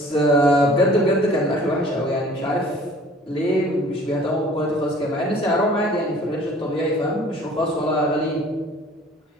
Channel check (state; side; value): normal; both; correlation 0.50